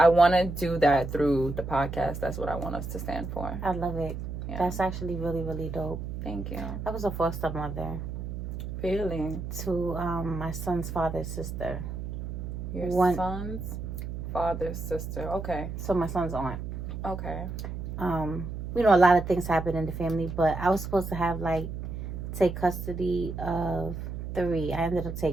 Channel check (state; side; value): noise; right; hum, 6 dB below the sound